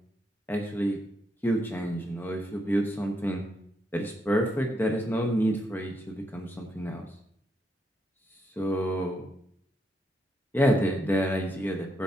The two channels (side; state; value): both; normal; correlation 0.79